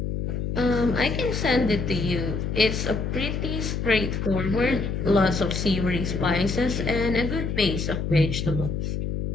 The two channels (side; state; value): left; noise; hum, 2 dB below the sound